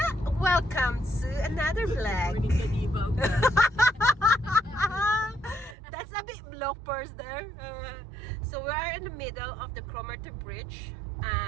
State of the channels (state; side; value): drops out; left; at 5.8 s